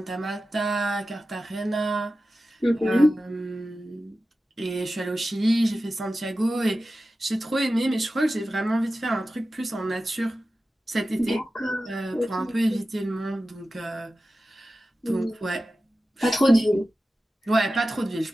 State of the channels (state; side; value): normal; both; correlation 0.94